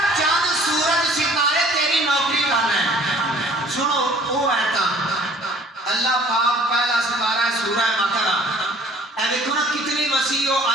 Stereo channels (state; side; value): normal; both; correlation 0.53